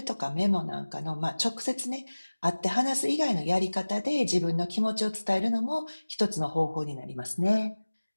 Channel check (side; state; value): both; inverted; correlation -1.00